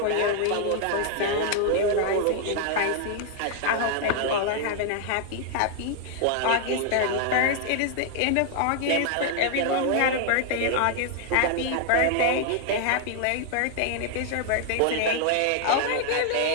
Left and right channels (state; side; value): different; both; correlation 0.00